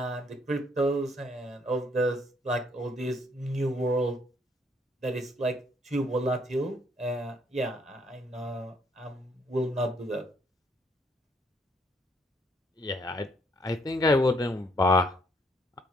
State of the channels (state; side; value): normal; both; correlation 0.68